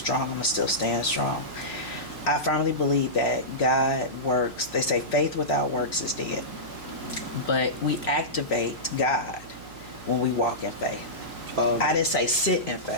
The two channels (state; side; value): noise; right; hum, 20 dB below the sound